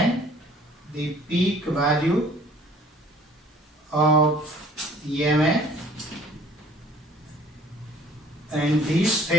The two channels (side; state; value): both; normal; correlation 0.54